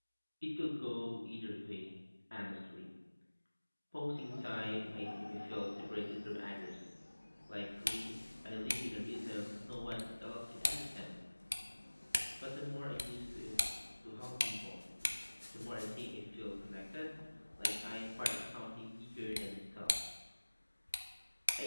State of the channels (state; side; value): inverted; both; correlation -1.00